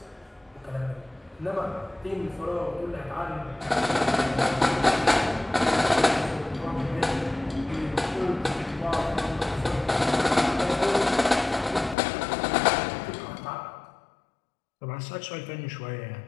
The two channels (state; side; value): drops out; right; at 12.0 s